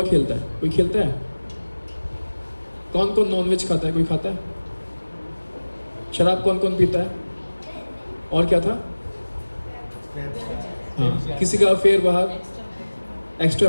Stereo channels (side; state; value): both; inverted; correlation -1.00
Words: खेलता है? कोई खेलता है? कौन कौन नॉनवेज खाता है? कोई खाता है? शराब कौन कौन पीता है? और क्या था? हाँ, किसी का अफेयर बाहर,